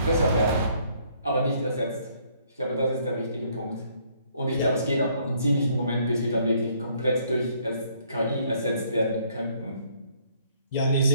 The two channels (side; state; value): both; inverted; correlation -0.65